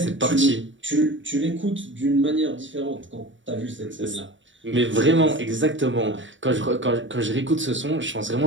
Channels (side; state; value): left; late; 0.55 ms